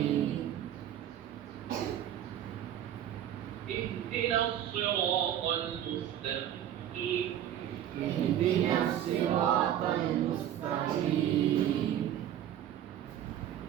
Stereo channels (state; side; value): quieter; left; 11.0 dB